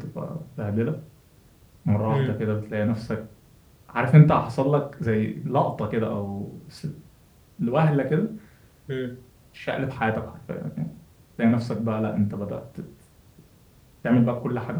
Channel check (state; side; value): identical; both; correlation 1.00